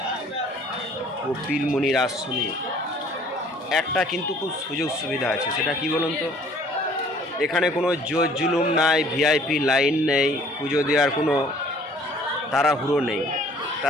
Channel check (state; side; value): normal; both; correlation 0.55